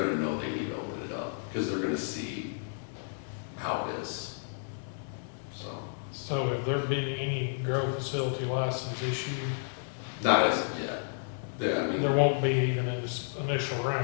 know they need to open it up, because they're gonna see how it is. So have there been any grow facility license issued? Not as of yet. I mean, There won't be even in this initial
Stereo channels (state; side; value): silent; right; digital silence